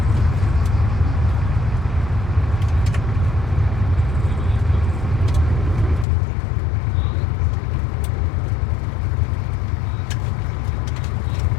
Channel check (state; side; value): drops out; right; at 6.1 s